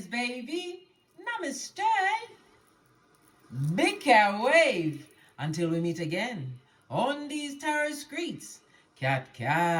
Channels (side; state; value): both; identical; correlation 1.00